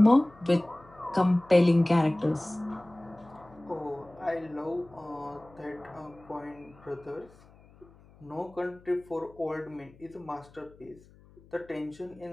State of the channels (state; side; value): noise; left; hum, 25 dB below the sound